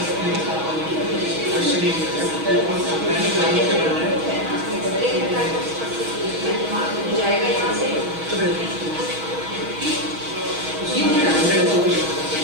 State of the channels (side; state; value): left; late; 6.4 ms